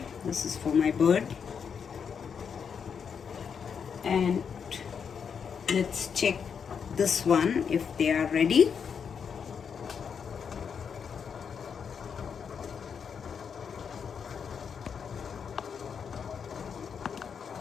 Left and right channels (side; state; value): right; quieter; 6.8 dB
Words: This is for my bird. And let's check this one if they are ready.